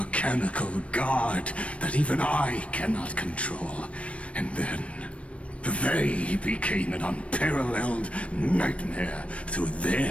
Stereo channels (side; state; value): right; late; 0.062 ms